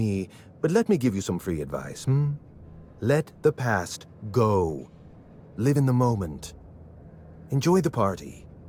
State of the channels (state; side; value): identical; both; correlation 1.00